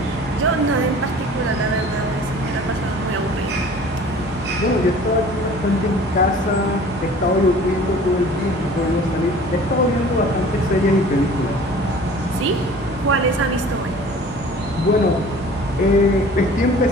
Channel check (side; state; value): both; normal; correlation 0.46